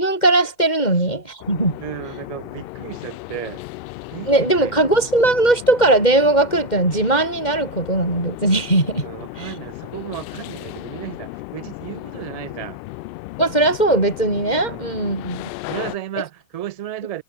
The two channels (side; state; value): right; late; 2.1 ms